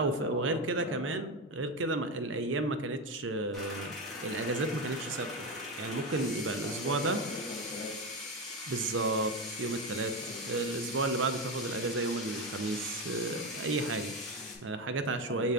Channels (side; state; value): both; normal; correlation 0.16